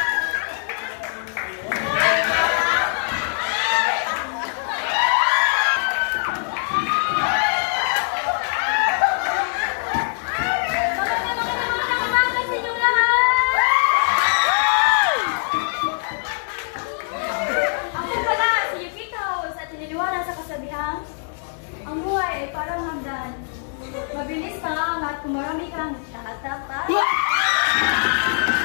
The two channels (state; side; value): silent; right; digital silence